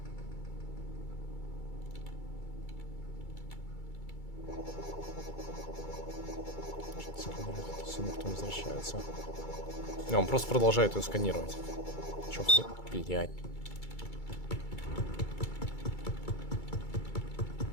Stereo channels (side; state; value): right; late; 2.3 ms